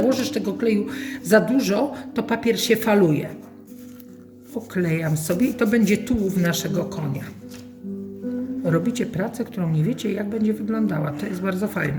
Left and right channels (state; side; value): identical; both; correlation 1.00